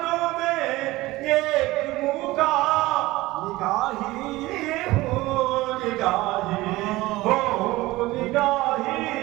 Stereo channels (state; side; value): quieter; left; 19.0 dB